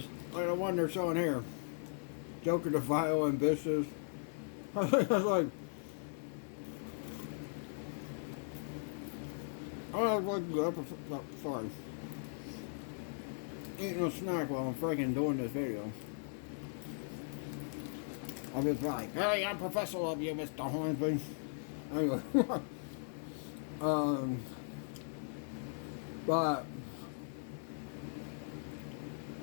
one they're showing here. Joker the Vile Ambitious. I was like, I was like, sorry. Eating a snack while I'm freaking doing this video. I was like, hey, I'm Professor Love You, Mr. Hornsby. Anyway. But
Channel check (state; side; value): silent; right; 52 dB below the other